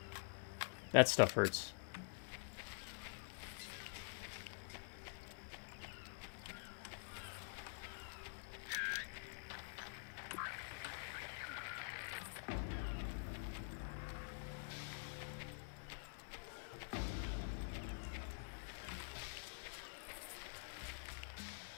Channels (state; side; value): silent; right; digital silence